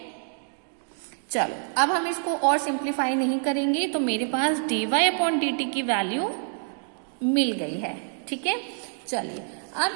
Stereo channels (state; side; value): silent; left; 60 dB below the other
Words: चलो अब हम इसको और सिंप्लीफाई नहीं करेंगे, तो मेरे पास dy/dt की वैल्यू मिल गई है, ठीक है। चलिए